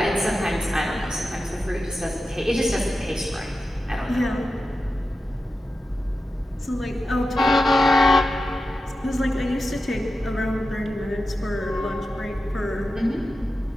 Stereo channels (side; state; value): both; normal; correlation 0.92